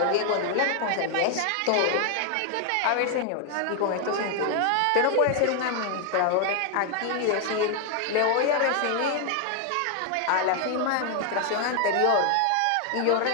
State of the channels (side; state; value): both; different; correlation 0.00